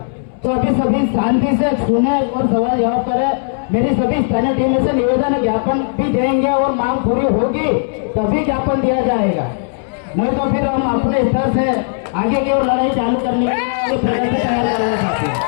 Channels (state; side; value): silent; right; 65 dB below the other